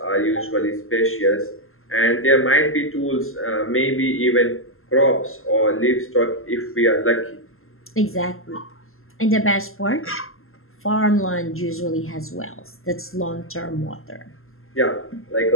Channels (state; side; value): late; right; 0.61 ms